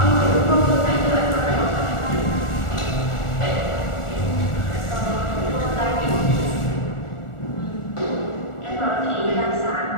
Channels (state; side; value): late; right; 1.4 ms